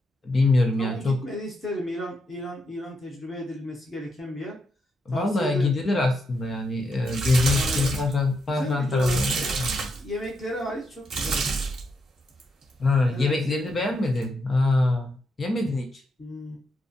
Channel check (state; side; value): normal; both; correlation 0.81